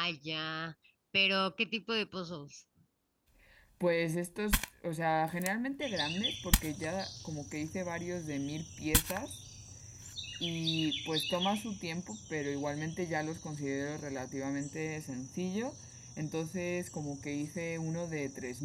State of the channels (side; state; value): both; identical; correlation 1.00